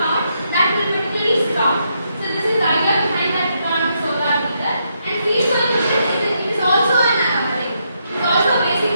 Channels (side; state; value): both; inverted; correlation -0.79